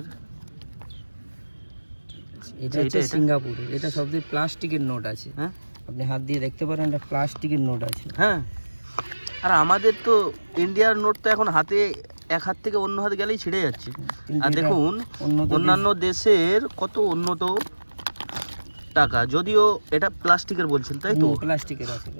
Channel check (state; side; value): inverted; both; correlation -1.00